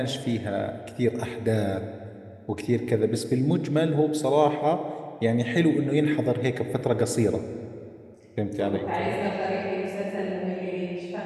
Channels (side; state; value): both; identical; correlation 1.00